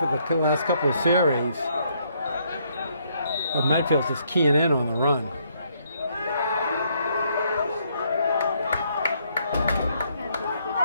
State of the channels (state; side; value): inverted; both; correlation -0.71